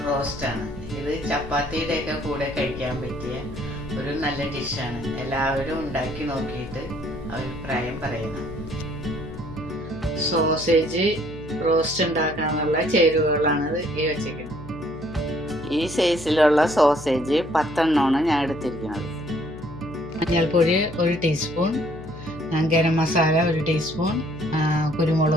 റോസ്റ്റാണ്. ഇത് ചപ്പാത്തിയുടെയൊക്കെ കൂടെ കഴിക്കാൻ പറ്റിയ ഒരു നല്ല ഡിഷാണ്. എല്ലാവരും ഉണ്ടാക്കി നോക്കിയിട്ട് അഭിപ്രായം പറയണം. സോസേജ് റോസ്റ്റ് ഉണ്ടാക്കാനുള്ള ചേരുവകളാണ് ഈ വെച്ചിരിക്കുന്നത്. ഈ സൈസിലുള്ള സോസേജ് 10 എണ്ണമാണ് ഞാൻ എടുത്തിരിക്കുന്നത്. മഞ്ഞൾപ്പൊടി 1 ടീസ്പൂൺ, ഗരം മസാല 1 ടീസ്പൂൺ,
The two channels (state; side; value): noise; left; hum, 15 dB below the sound